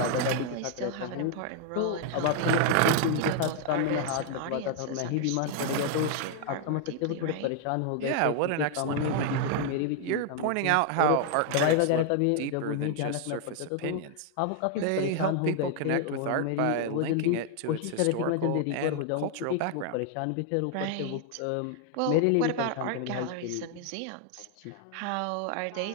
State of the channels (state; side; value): different; both; correlation 0.00